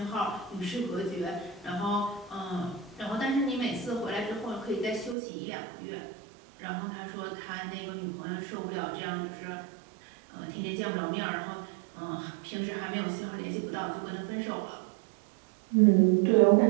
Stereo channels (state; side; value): drops out; left; at 5.2 s